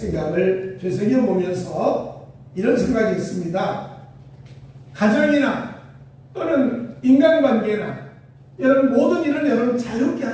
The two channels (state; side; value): identical; both; correlation 1.00